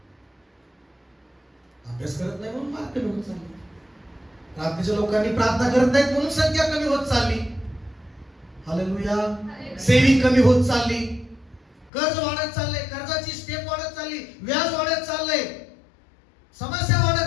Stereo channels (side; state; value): right; drops out; at 11.9 s